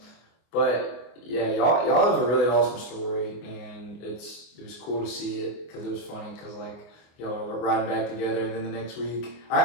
but yeah, y'all have a really awesome story, and it was cool to see it because it was funny because y'all were riding back together, and then the next week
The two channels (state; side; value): late; right; 24 ms